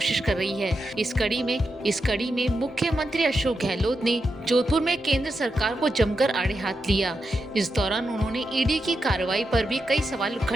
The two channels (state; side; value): normal; both; correlation 0.87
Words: कर रही है। इस कड़ी में मुख्यमंत्री अशोक गहलोत ने जोधपुर में केंद्र सरकार को जमकर आड़े हाथ लिया। इस दौरान उन्होंने ईडी की कार्रवाई पर भी कई सवाल